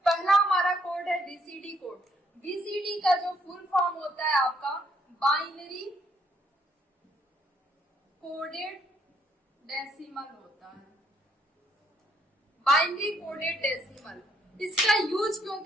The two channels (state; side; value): normal; both; correlation 0.70